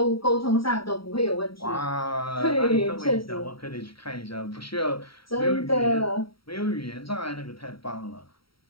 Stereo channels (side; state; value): right; late; 0.75 ms